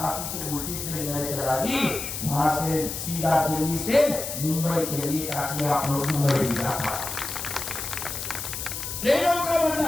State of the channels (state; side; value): noise; left; hiss, 6 dB below the sound